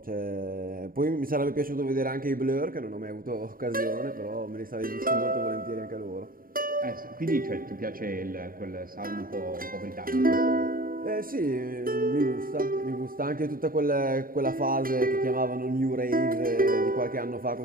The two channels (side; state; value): left; late; 0.41 ms